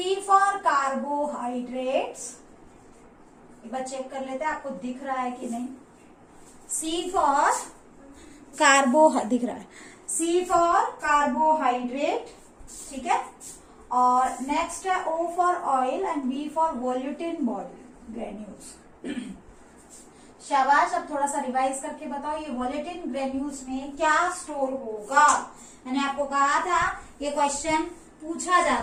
फॉर कार्बोहाइड्रेट्स, एक बार चेक कर लेते हैं आपको दिख रहा है कि नहीं। सी फॉर दिख रहा है, सी फॉर कार्बोहाइड्रेट, ठीक है। और नेक्स्ट है O for oil and B for volutin body granules. शाबाश, अब थोड़ा सा रिवाइज करके बताओ ये वोलेटिन ग्रेन्यूल्स में क्या स्टोर होगा। मैंने आपको कहा था ये क्वेश्चन पूछा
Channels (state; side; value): identical; both; correlation 1.00